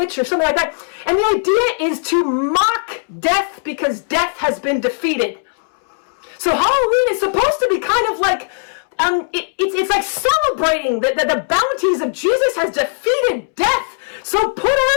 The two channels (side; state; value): right; silent; 67 dB below the other